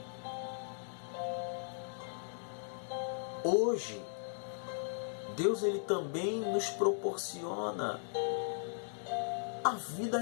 Hoje, Deus ele também nos proporciona a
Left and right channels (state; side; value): silent; right; digital silence